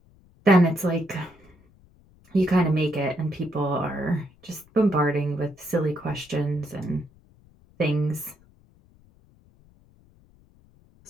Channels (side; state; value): left; noise; rumble, 29 dB below the sound